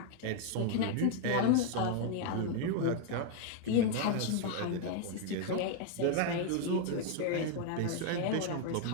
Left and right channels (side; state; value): both; different; correlation 0.00